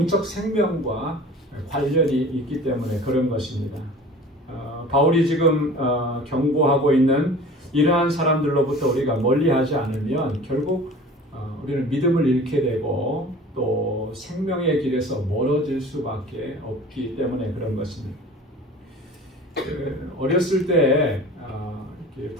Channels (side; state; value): both; normal; correlation 0.42